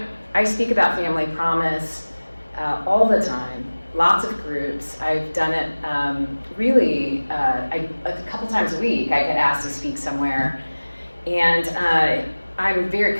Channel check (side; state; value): both; inverted; correlation -1.00